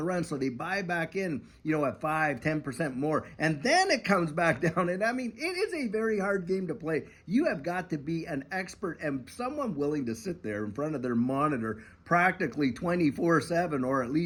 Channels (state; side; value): identical; both; correlation 1.00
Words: run. So they buy back in, at 5-10% more. And then it comes back down. And I mean, it is a very hard game to play. You have got to be an expert and someone willing to sit there in front of their monitor practically 24/7, or at